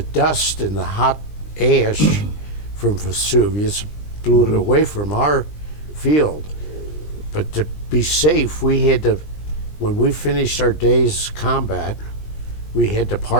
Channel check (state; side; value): late; right; 20 ms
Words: dust and the hot ash from Vesuvius, blew it away from our field. But to be safe, we had to, when we finished our day's combat, we had to